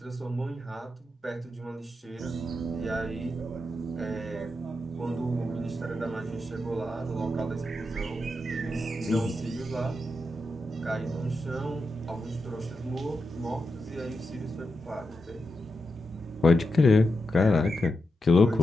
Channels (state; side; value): normal; both; correlation 0.87